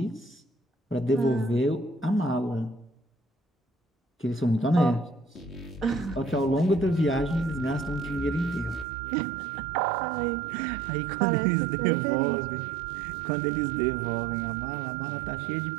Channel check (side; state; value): left; drops out; at 8.8 s